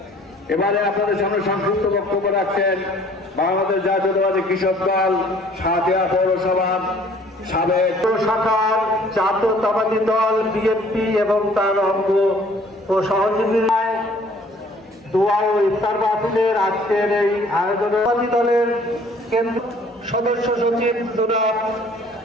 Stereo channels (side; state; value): both; normal; correlation 0.56